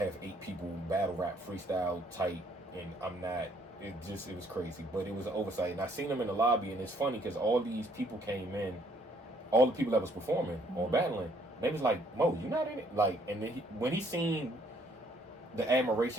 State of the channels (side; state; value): both; normal; correlation 0.65